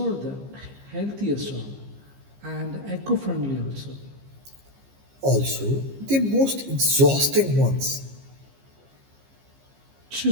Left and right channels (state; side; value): late; left; 15 ms